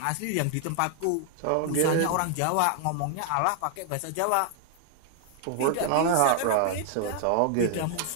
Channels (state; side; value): different; both; correlation 0.00